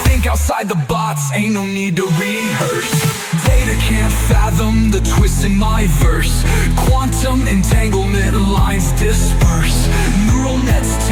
Think outside the box, ain't no need to rehearse. Data can't fathom the twist in my verse. Quantum entanglement lines disperse. Neural nets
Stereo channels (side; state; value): both; identical; correlation 1.00